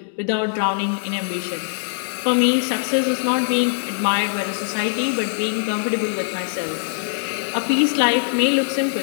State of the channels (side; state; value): right; silent; digital silence